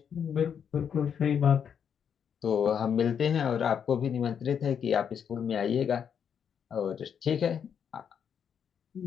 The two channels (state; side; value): quieter; right; 7.8 dB